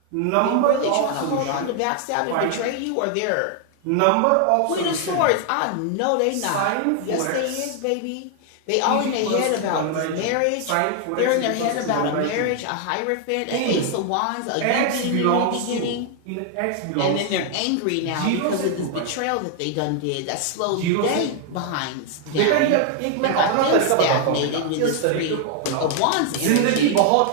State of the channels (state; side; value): different; both; correlation 0.00